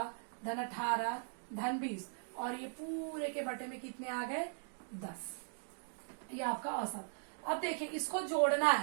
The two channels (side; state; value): left; silent; digital silence